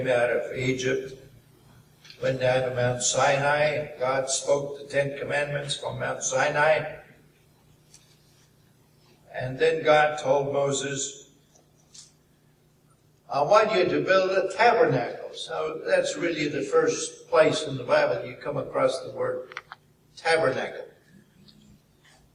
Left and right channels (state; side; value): identical; both; correlation 1.00